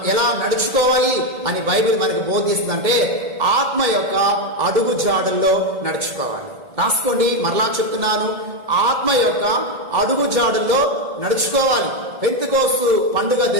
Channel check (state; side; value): late; left; 1.7 ms